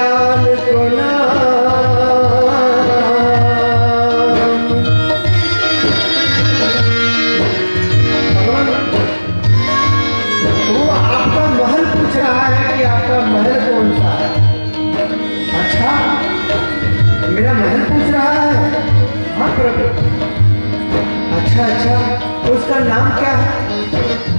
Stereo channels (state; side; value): inverted; both; correlation -1.00